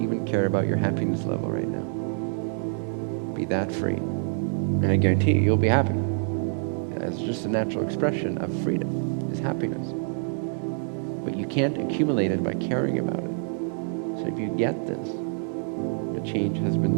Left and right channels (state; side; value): silent; left; digital silence